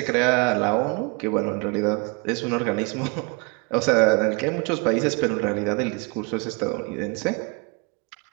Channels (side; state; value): left; quieter; 31.3 dB